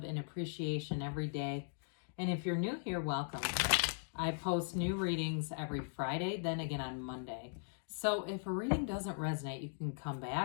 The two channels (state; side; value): silent; right; digital silence